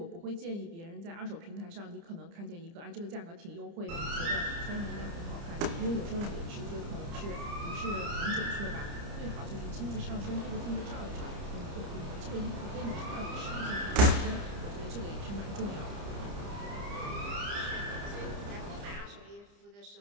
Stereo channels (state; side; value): late; left; 30 ms